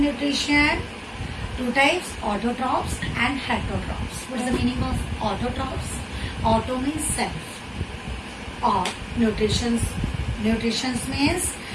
Two types, autotrophs and heterotrophs. What is the meaning of autotrophs? Auto means self. Or nutrition means,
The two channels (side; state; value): both; identical; correlation 1.00